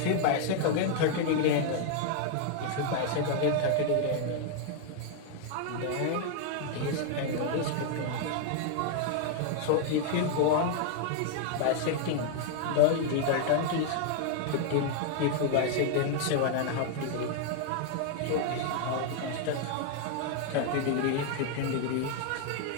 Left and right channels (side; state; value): both; different; correlation 0.00